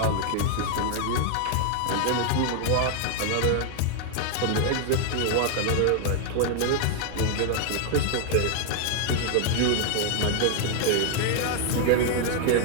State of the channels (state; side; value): different; both; correlation 0.00